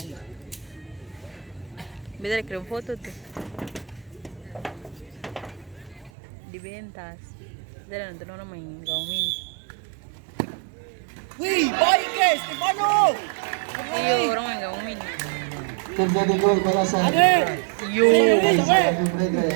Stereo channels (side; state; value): left; drops out; at 6.1 s